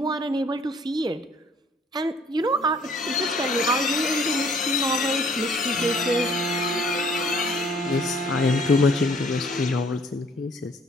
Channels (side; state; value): both; normal; correlation 0.59